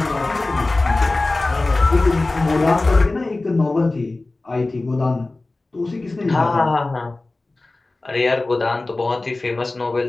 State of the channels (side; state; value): right; quieter; 3.1 dB